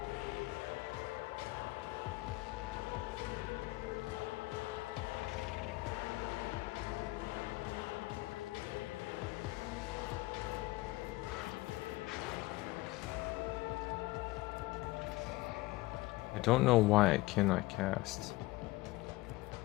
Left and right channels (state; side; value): quieter; right; 19.7 dB